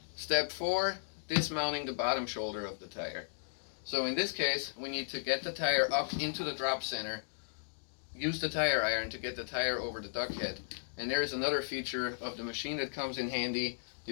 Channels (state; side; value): silent; right; digital silence